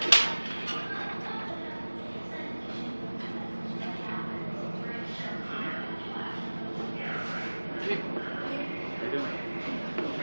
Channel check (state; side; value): inverted; both; correlation -1.00